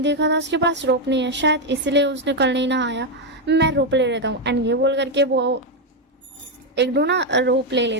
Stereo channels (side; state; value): both; normal; correlation 0.04